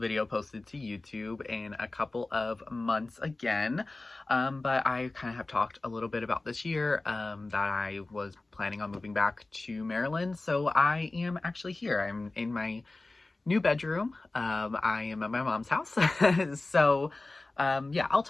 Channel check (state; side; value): quieter; right; 3.1 dB